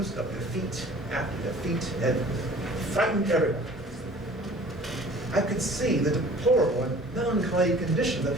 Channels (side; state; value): both; normal; correlation 0.48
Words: of defeat after defeat had frightened everyone. I could see the deplorable and melancholy condition that